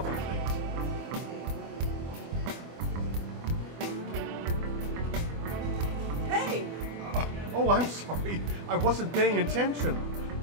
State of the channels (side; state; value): left; late; 24 ms